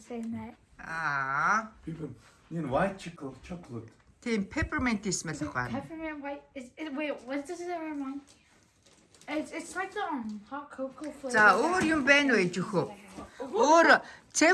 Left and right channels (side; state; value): both; identical; correlation 1.00